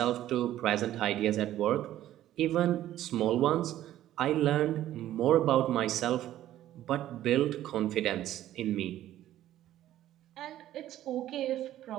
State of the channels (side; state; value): left; quieter; 13.1 dB